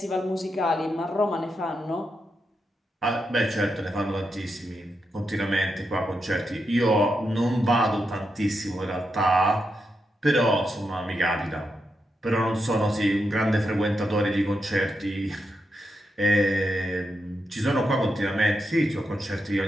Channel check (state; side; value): normal; both; correlation 0.85